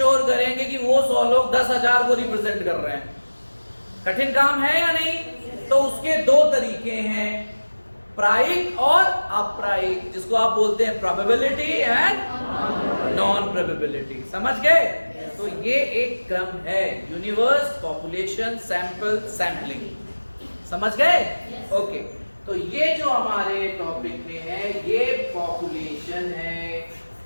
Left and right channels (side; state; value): both; inverted; correlation -1.00